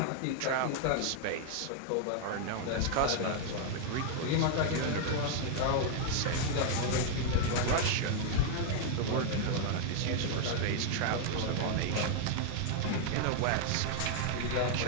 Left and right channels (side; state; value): both; different; correlation 0.00